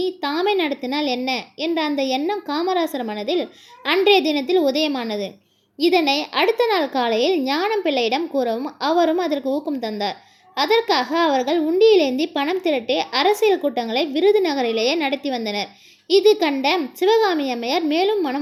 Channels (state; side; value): identical; both; correlation 1.00